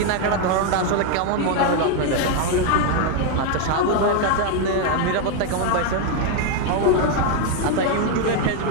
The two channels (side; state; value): both; different; correlation 0.01